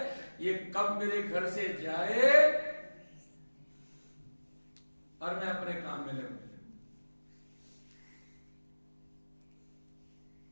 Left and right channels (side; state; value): both; inverted; correlation -1.00